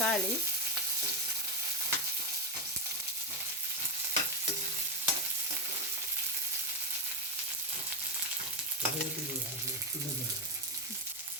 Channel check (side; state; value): both; normal; correlation 0.08